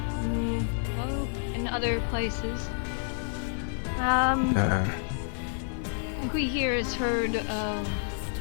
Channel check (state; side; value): silent; right; digital silence